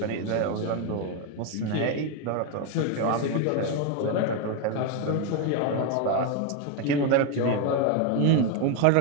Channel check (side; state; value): both; different; correlation 0.01